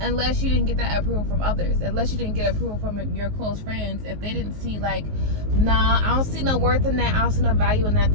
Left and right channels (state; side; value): late; left; 19 ms